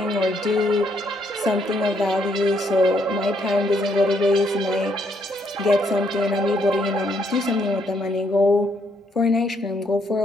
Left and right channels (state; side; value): normal; both; correlation 0.72